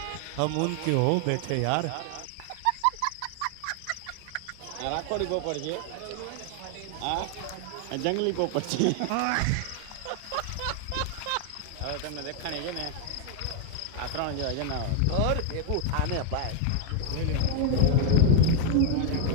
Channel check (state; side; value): different; both; correlation 0.00